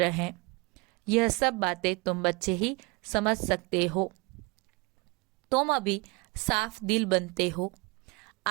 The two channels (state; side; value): quieter; left; 27.3 dB